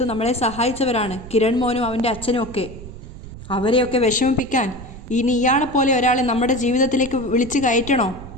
നമ്മളെ സഹായിച്ചവരാണ് കിരൺ മോനും അവൻ്റെ അച്ഛനും ഒക്കെ. അവരെയൊക്കെ വിഷമിപ്പിക്കാൻ ഇനി ഇയാളെ പോലെ ഒരാളെ നമ്മുടെ ജീവിതത്തിലേക്ക് വിളിച്ച് കയറ്റണോ?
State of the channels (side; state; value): right; noise; rumble, 14 dB below the sound